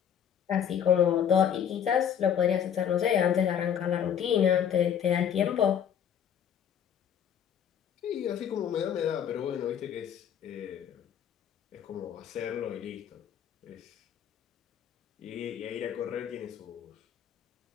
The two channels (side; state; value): right; quieter; 8.8 dB